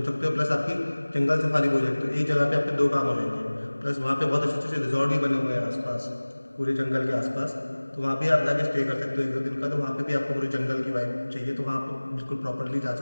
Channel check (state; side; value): inverted; both; correlation -1.00